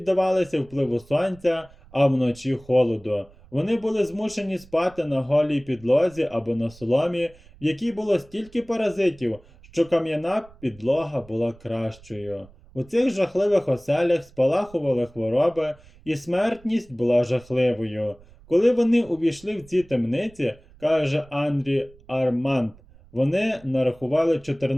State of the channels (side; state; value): right; noise; rumble, 25 dB below the sound